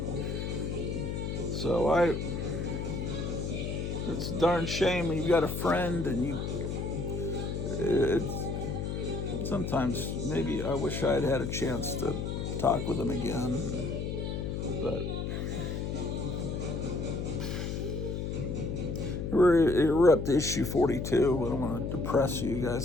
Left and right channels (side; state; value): left; noise; hum, 3 dB below the sound